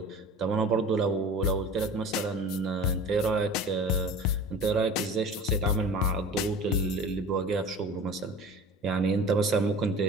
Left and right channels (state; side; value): normal; both; correlation 0.39